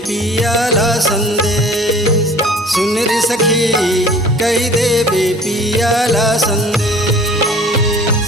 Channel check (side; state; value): both; normal; correlation 0.47